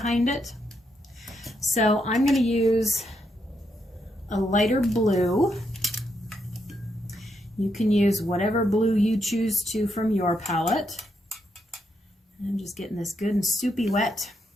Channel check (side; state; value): both; normal; correlation 0.80